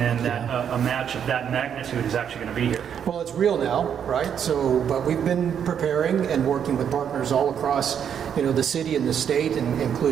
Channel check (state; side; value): quieter; left; 8.3 dB